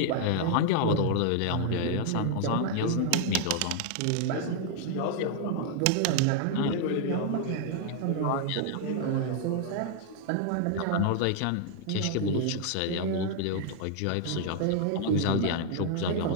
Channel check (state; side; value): different; both; correlation 0.00